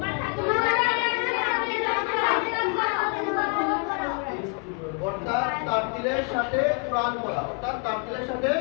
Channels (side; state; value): right; quieter; 35.6 dB